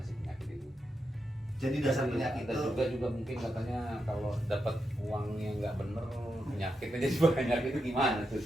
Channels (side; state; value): both; normal; correlation 0.86